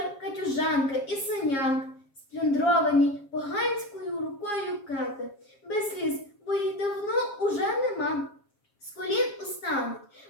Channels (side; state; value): right; late; 7.4 ms